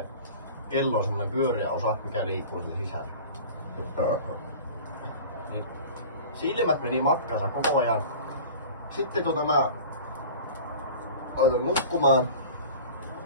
kello on semmonen pyöreä osa, mikä liikkuu sen sisällä. Niin silmät meni matkansa koko ajan. Sitten mä laitoin nukkumaan.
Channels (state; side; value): inverted; both; correlation -0.39